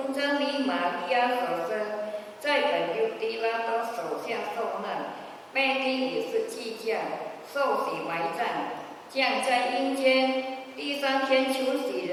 真理玛利亚所生，在本犹地拉多手下受难，被钉以是祭架，受洗埋葬，降在阴间，第3天求死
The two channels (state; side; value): identical; both; correlation 1.00